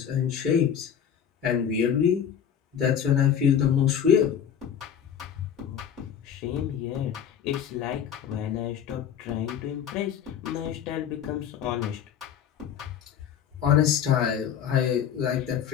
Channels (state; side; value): quieter; right; 8.7 dB